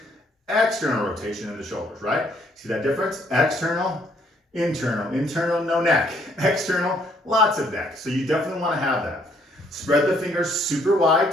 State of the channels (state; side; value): normal; both; correlation 0.67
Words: external rotation in the shoulders, right? See that difference? External, internal, no neck. External, lots of neck. So you definitely want to have that. Spread the fingers super